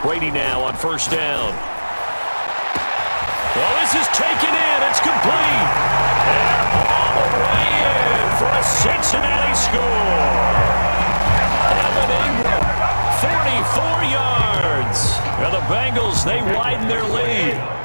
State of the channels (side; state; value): both; inverted; correlation -1.00